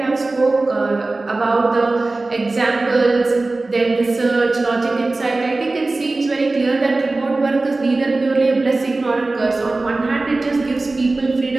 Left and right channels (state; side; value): quieter; left; 3.2 dB